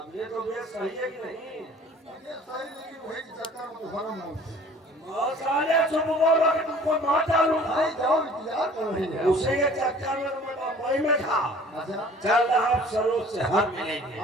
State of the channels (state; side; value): normal; both; correlation 0.50